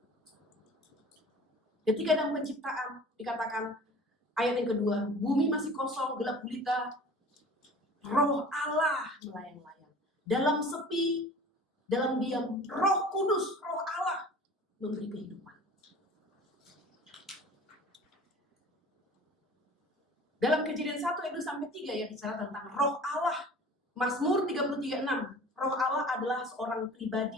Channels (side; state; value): both; normal; correlation 0.43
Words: Ketika dalam penciptaan dikatakan ayat yang kedua, bumi masih kosong, gelap gulita, Roh Allah melayang-layang. Dalam sepi, dalam diam, Roh Kudus, Roh Allah memberi kehidupan. Dalam Kejadian 1 ayat 2-3 ya bicara tentang Roh Allah. Mazmur 33:6. Roh Allah adalah seorang